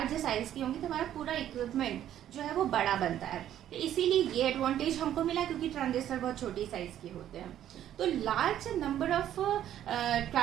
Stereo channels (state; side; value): quieter; left; 11.3 dB